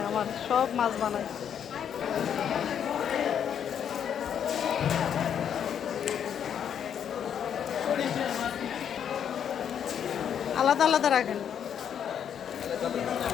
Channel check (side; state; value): right; quieter; 8.7 dB